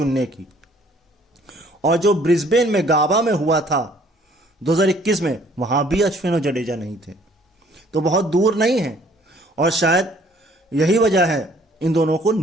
की। और जो ब्रिस्बेन में गाबा में हुआ था 2021 में, वहां भी अश्विन और जडेजा नहीं थे। तो बहुत दूर नहीं है, और शायद यही वजह है इन दोनों को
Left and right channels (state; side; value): normal; both; correlation 0.59